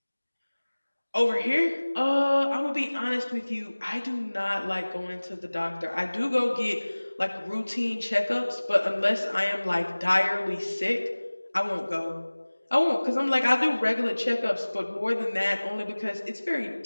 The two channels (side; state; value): both; inverted; correlation -1.00